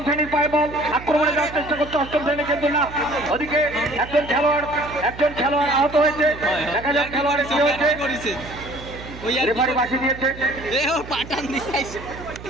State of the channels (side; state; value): right; noise; hum, 14 dB below the sound